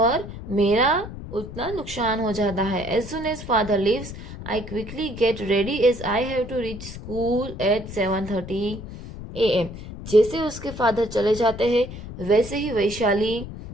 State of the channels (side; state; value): left; noise; rumble, 11 dB below the sound